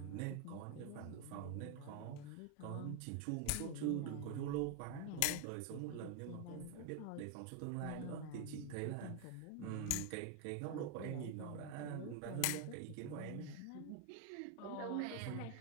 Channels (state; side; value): different; both; correlation 0.01